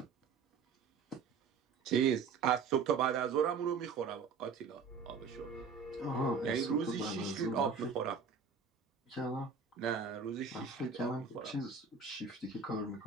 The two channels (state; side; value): quieter; left; 5.4 dB